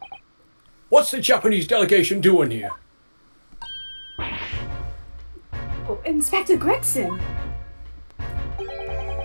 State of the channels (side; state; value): both; inverted; correlation -1.00